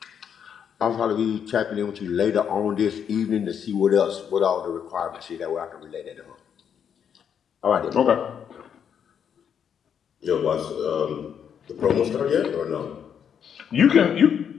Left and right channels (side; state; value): right; quieter; 8.0 dB